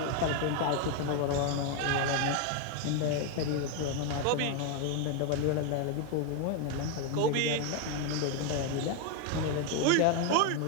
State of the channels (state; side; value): different; both; correlation 0.01